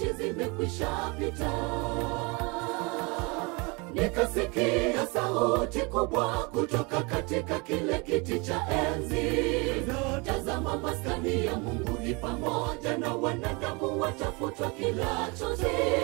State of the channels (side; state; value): left; quieter; 28.7 dB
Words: zimekwisha pita. Nikasikia sauti kubwa kutoka katika kile kiti cha enzi, tazama, maskani ya Mungu ni pamoja na wanadamu, watafutwa kila chozi.